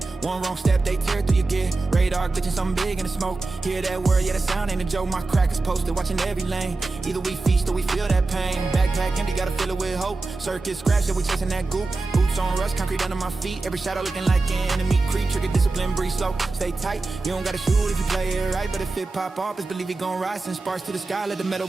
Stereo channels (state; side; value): quieter; left; 3.5 dB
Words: One wrong step, they tear through your gear. Radar glitching, something big in the smoke. Hear that word, yeah, that sound ain't a joke. My crack is posted, watching every lane. Either we feast or we feel that pain. Backpack empty, gotta fill it with hope. Circuit scratch, yeah, we chasing that goop. Boots on rust, concrete under my feet. Every shadow looking like an enemy creep. Trigger discipline, breathe slow, stay tight. You don't gotta shoot if you play it right. But if it pop off, just believe it gon' rise. Send sparks to the sky, let the metal